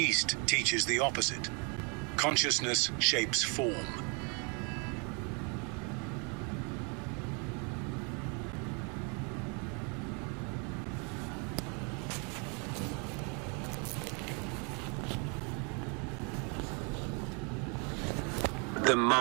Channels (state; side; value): quieter; left; 34.9 dB